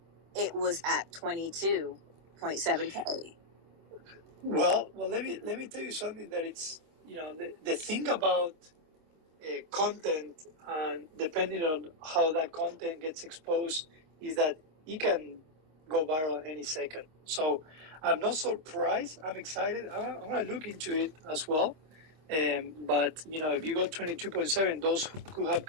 it was at 22.7K. Well, let me tell you something that it's the thing about content, and depending on how that content gets exposed, is that it can go viral any second. So I'm not surprised. I'm excited. I'm going to look into it as well. But if you go 22.7, those could have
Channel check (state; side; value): late; left; 26 ms